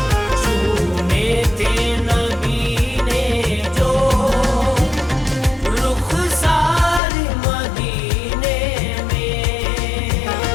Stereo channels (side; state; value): right; drops out; at 7.0 s